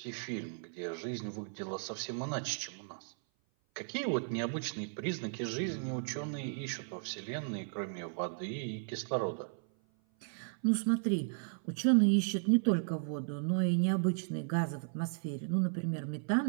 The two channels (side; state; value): left; silent; 54 dB below the other